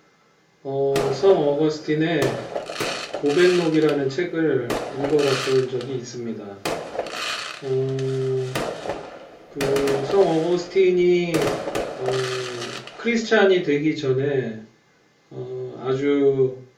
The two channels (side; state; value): both; identical; correlation 1.00